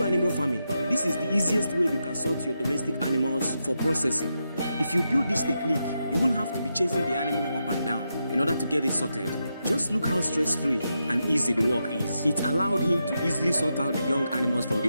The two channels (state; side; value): inverted; both; correlation -0.86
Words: animal farming, this is the easiest way you can sort your domestic animals for processing. If you build this technique, you won't have to be chasing the animal up and down in order to get it sorted. Just look how stress-free and easy the work is. It allowed him to easily sort out the young animals from